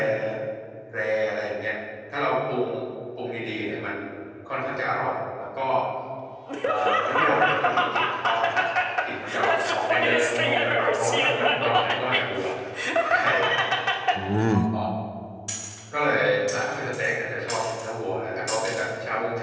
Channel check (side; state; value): both; identical; correlation 1.00